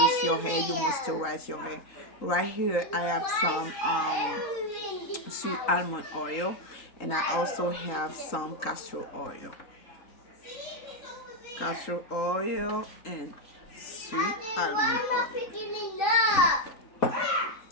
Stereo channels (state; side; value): late; right; 3.8 ms